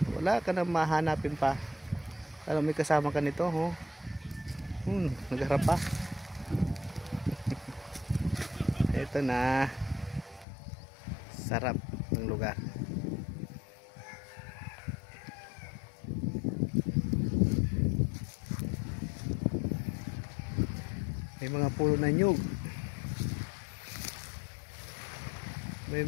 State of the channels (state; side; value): drops out; right; at 10.5 s